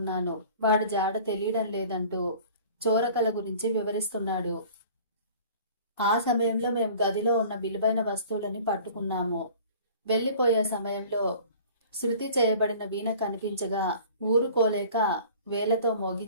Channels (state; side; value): inverted; both; correlation -0.46